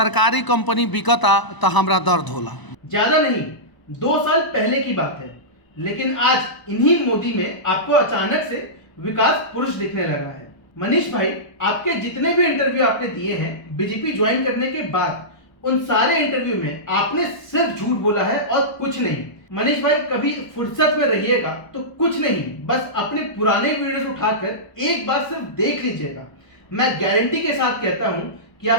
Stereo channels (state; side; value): late; right; 1.0 ms